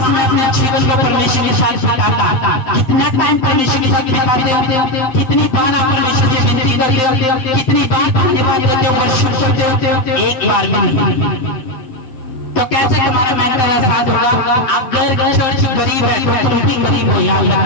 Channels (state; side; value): late; right; 7.7 ms